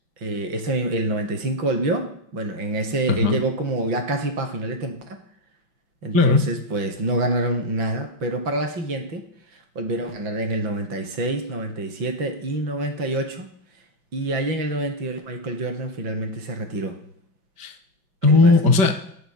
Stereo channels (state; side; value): late; left; 5.9 ms